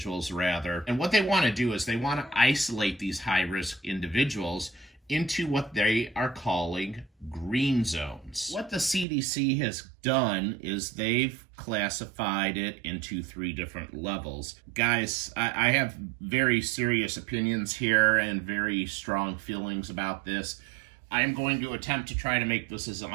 rather. And what they want to do is they want to isolate these high-risk individuals into what they are calling green zones. What the CDC has done is they've classified it into 3 different levels. Guys, I have very serious opinions here and very strong feelings about this. I am going to attempt to try to make this as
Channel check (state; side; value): drops out; left; at 9.1 s